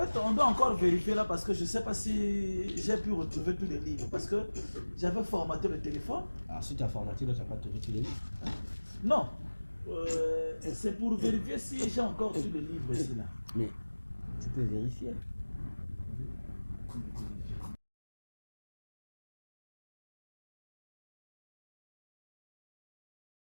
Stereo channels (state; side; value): inverted; both; correlation -1.00